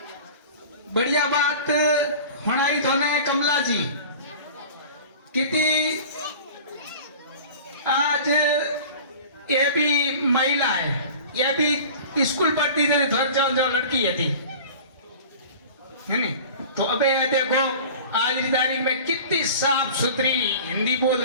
बढ़िया बात हणाई थोने कमला जी कितनी आज ये भी महिला है, ये भी स्कूल पढ़ती थी, थोड़ी जो लड़की थी है नहीं। तो अबे ये देखो आज की तारीख में कितनी साफ सुथरी हिंदी बोल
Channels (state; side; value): inverted; both; correlation -0.40